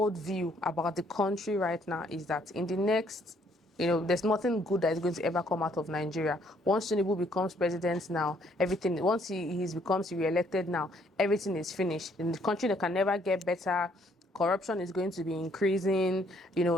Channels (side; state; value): both; normal; correlation 0.66